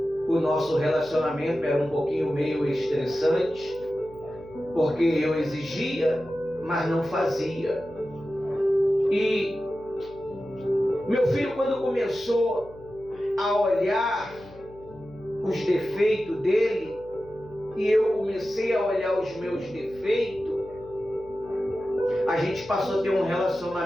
o nosso relacionamento. Era um pouquinho meio estressante, porque eu exigia, mas não fazia. E meu filho, quando começou a olhar os defeitos dele, e eu comecei a olhar os meus defeitos, a gente passou a ter um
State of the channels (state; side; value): noise; left; hum, 22 dB below the sound